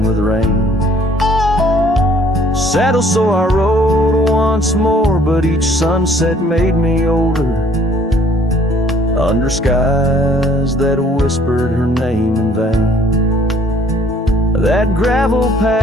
with rain. Saddle so I rode once more, but each sunset made me older, under skies that whispered her name in vain. That gravel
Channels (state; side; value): normal; both; correlation 0.59